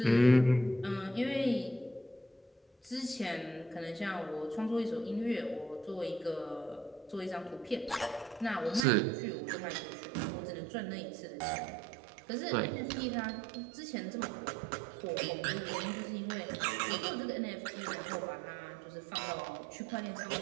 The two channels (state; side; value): drops out; left; at 8.8 s